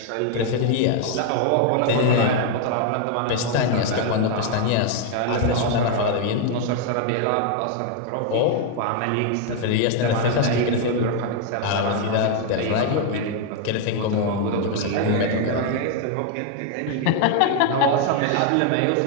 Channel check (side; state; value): both; different; correlation 0.00